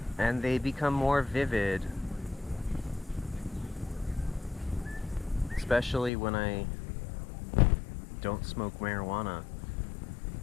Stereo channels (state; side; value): drops out; right; at 6.1 s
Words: and they become more vivid, especially when I don't smoke marijuana,